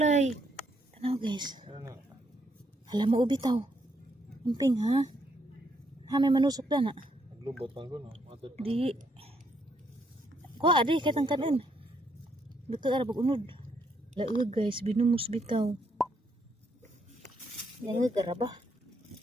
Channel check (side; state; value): both; normal; correlation 0.74